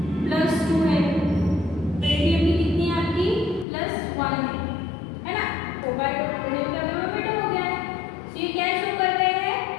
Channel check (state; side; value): drops out; right; at 3.7 s